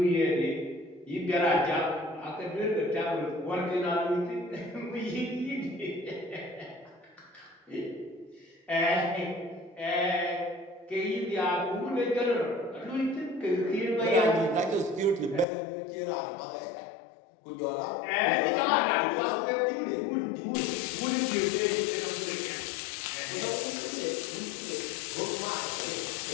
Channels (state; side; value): drops out; right; at 15.5 s